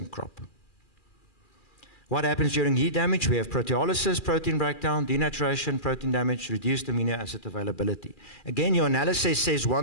crop. What happens during heat damage? We have proteolysis, protein breakdown, denaturation, protein damage, reduced amino acid availability. Again, your analysis says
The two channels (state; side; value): late; right; 2.4 ms